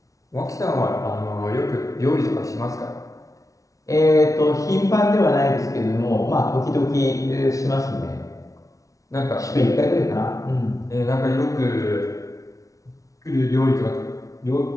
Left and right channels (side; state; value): right; late; 0.16 ms